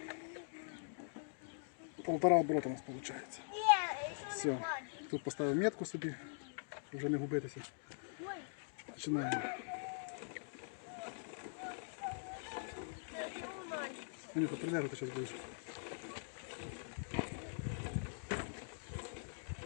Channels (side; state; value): right; silent; digital silence